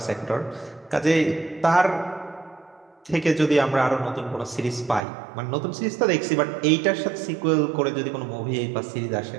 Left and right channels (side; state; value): left; drops out; at 5.0 s